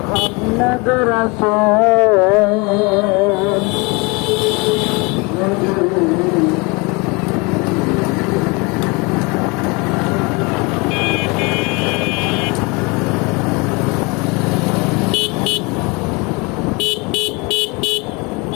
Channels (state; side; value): quieter; right; 27.9 dB